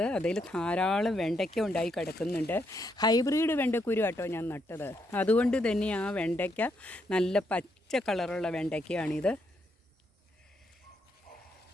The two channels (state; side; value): normal; both; correlation 0.77